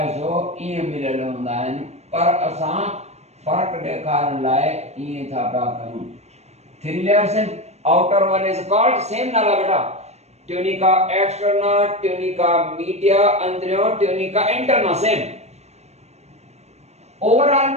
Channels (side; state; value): left; late; 0.32 ms